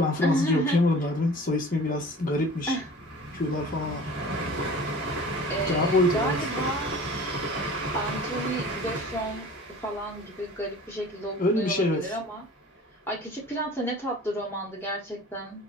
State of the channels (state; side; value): normal; both; correlation 0.43